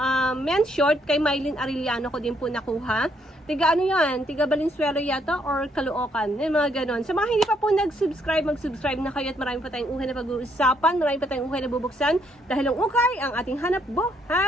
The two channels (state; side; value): normal; both; correlation 0.71